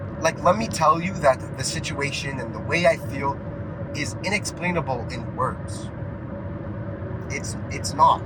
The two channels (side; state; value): both; identical; correlation 1.00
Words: like, let me tell you that the situation and the way I feel is inexplainable in words. It's not.